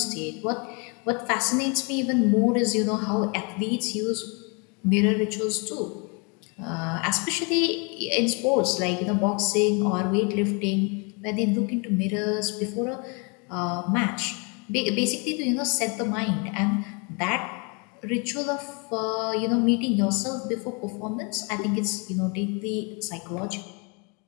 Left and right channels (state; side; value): quieter; right; 33.1 dB